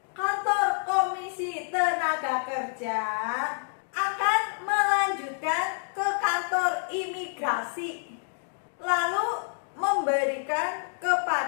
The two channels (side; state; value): right; silent; digital silence